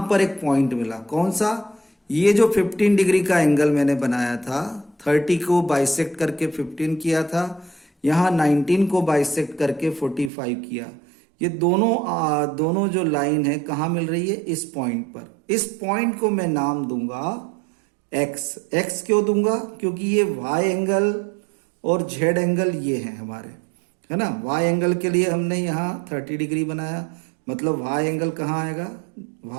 पर एक पॉइंट मिला, कौन सा, ये जो 15 डिग्री का एंगल मैंने बनाया था, 30 को बाइसेक्ट करके 15 किया था, यहां 19 को बाइसेक्ट करके 45 किया। ये दोनों जो लाइन है कहां मिल रही है, इस पॉइंट पर। इस पॉइंट को मैं नाम दूंगा एक्स। एक्स क्यों दूंगा, क्योंकि ये वाई एंगल और जेड एंगल ये हैं हमारे, है ना। वाई एंगल के लिए हमने यहाँ 30 डिग्री बनाया, मतलब वाई एंगल कहाँ आएगा,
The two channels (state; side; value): drops out; left; at 10.3 s